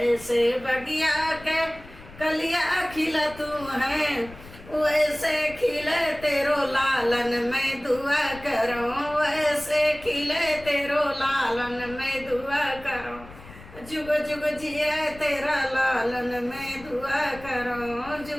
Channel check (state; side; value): noise; left; rumble, 18 dB below the sound